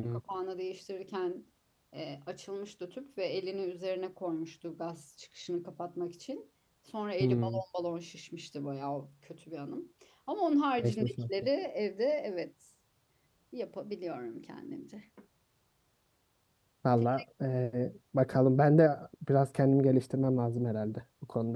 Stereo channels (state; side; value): identical; both; correlation 1.00